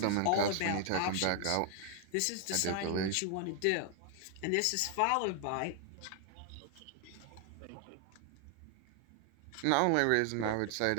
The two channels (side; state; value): both; different; correlation 0.00